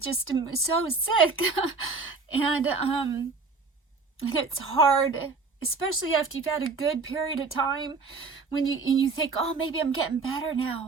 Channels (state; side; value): quieter; left; 4.3 dB